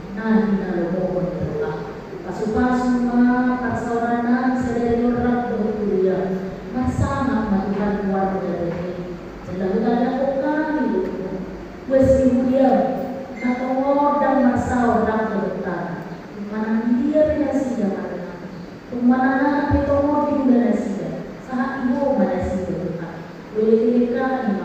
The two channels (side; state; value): both; identical; correlation 1.00